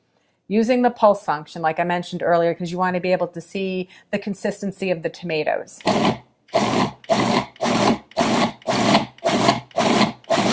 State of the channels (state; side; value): identical; both; correlation 1.00